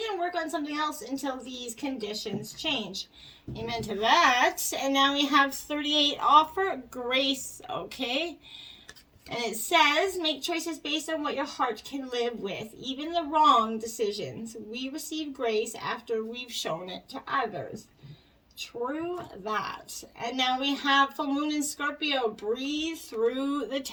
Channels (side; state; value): both; identical; correlation 1.00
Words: and work on something else until these conditions change. Amen to that. And now we have 38. Offer grace, okay? And it says, make choices based on what your heart can live with, even the wrong decisions. We receive grace after we've shown it to others. True that. And now we have full moon in Scorpio. Breathe through the